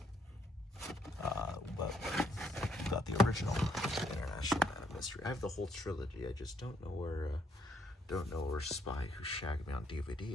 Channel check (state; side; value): normal; both; correlation 0.70